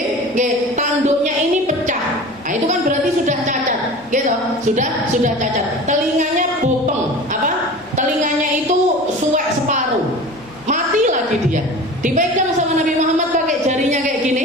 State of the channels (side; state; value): left; noise; hum, 28 dB below the sound